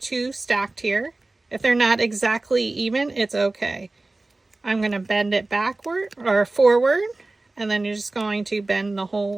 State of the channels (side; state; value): left; quieter; 3.1 dB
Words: 2 stacked here. If they're not exactly even, it's okay. I'm going to bend it backward or forward, and then you're just going to bend